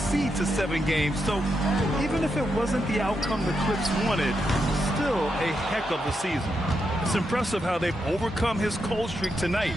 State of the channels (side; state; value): both; normal; correlation 0.83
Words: to 7 games. So even if it wasn't the outcome the Clips wanted, still a heck of a season. It's impressive how they've overcome his cold streak tonight.